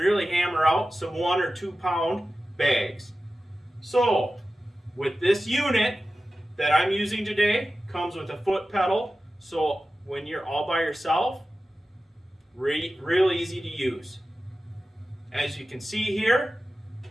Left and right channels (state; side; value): normal; both; correlation 0.94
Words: hammer out some 1 or 2 pound bags. So, with this unit that I'm using today, comes with a foot pedal, so when you're all by yourself, real easy to use. As you can see here,